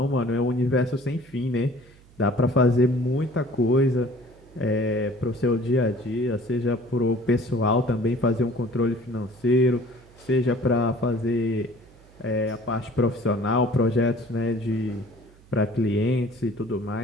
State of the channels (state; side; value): noise; right; hum, 26 dB below the sound